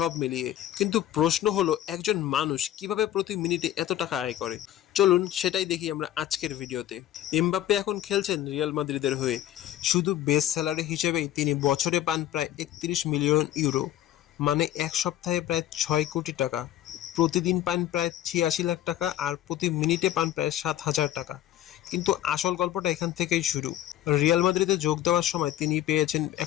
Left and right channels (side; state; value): right; quieter; 12.6 dB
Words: মিলিয়ে। কিন্তু প্রশ্ন হলো, একজন মানুষ কিভাবে প্রতি মিনিটে এত টাকা আয় করে? চলুন সেটাই দেখি আমরা আজকের ভিডিওতে। এমবাপ্পে এখন খেলছেন রিয়াল মাদ্রিদের হয়ে। শুধু বেস স্যালারি হিসেবেই তিনি বছরে পান প্রায় ৩১ মিলিয়ন ইউরো, মানে এক সপ্তাহে প্রায় ৬ কোটি টাকা। প্রতিদিন পান প্রায় ৮৬ লাখ টাকা, আর প্রতি মিনিটে পান প্রায় ৭,০০০ টাকা। কিন্তু আসল গল্পটা এখান থেকেই শুরু। রিয়াল মাদ্রিদে যোগ দেওয়ার সময় তিনি পেয়েছেন